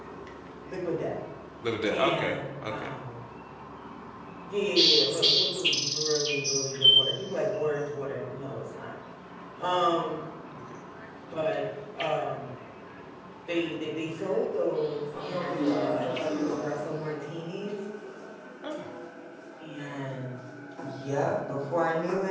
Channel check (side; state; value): both; identical; correlation 1.00